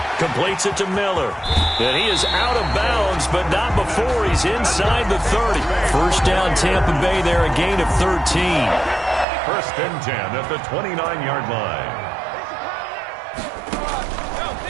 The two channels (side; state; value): left; drops out; at 9.2 s